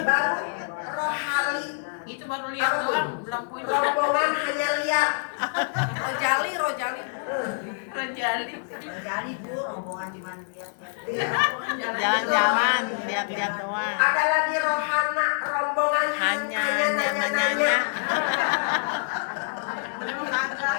rohali. Itu baru lihat doang, belum punya. Rombongan hanya lihat. Rojali. Rejali. Jadi Bu rombongan cuma lihat-lihat. Jalan-jalan, lihat-lihat doang. Ada lagi rohana, rombongan Hanya nanya-nanya.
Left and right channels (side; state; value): right; silent; digital silence